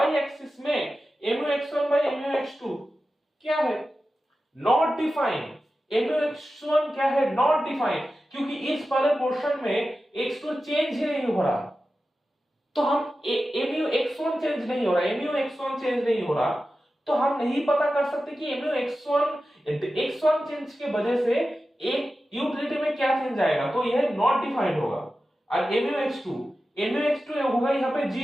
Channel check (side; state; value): both; normal; correlation 0.93